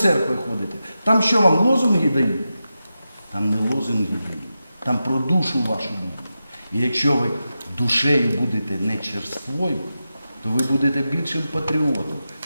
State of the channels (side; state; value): both; inverted; correlation -0.91